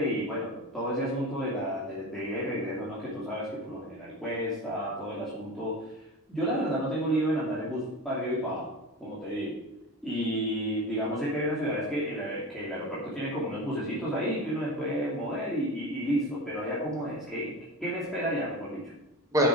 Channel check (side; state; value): both; normal; correlation 0.29